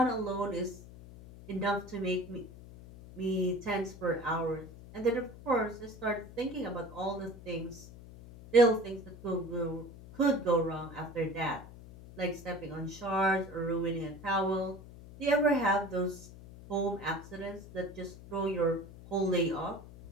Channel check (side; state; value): left; noise; hum, 17 dB below the sound